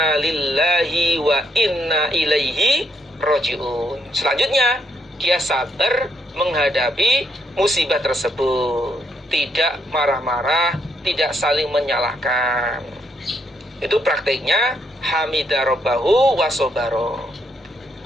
lillahi wa inna ilaihi raji'un. Selanjutnya, dia sabar menghadapi musibah tersebut, tidak marah-marah, tidak saling menyalahkan. Itu praktiknya hamida rabbahu wa sobaro.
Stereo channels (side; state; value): both; normal; correlation 0.74